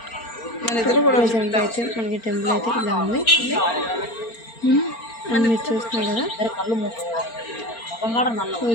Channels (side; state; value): right; late; 4.4 ms